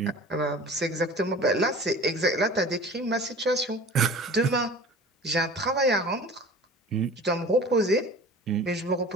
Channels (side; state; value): both; normal; correlation 0.41